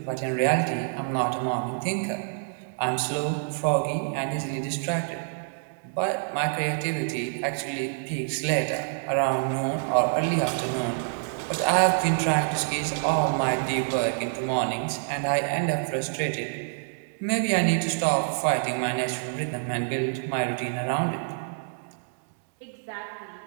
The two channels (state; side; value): silent; left; 60 dB below the other